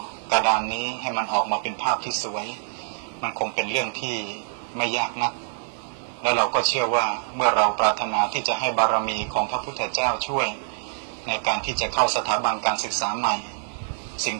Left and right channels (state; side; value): silent; left; digital silence